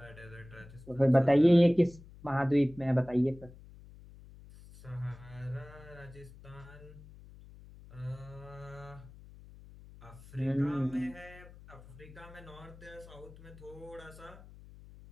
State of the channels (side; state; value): left; noise; hum, 19 dB below the sound